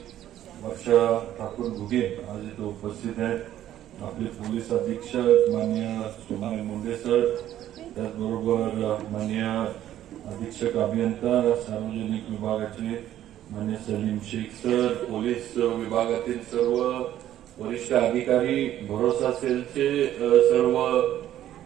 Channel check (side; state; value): left; quieter; 12.2 dB